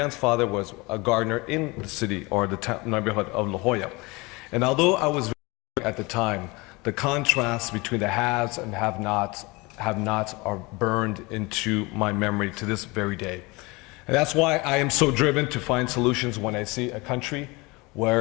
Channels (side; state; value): right; quieter; 24.8 dB